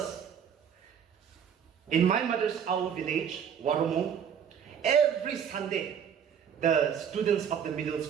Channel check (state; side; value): quieter; left; 8.0 dB